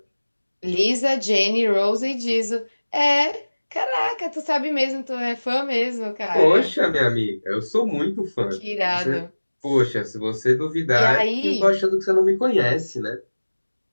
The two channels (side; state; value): both; inverted; correlation -1.00